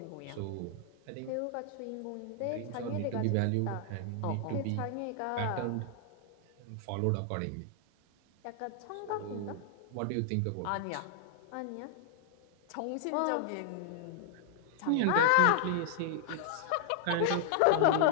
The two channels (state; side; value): different; both; correlation -0.01